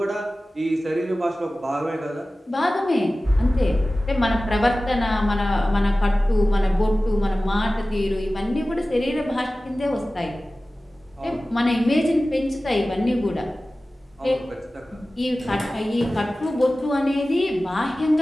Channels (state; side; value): normal; both; correlation 0.96